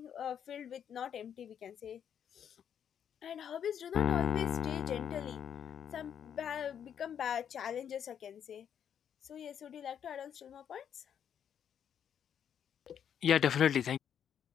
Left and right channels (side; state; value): right; quieter; 8.7 dB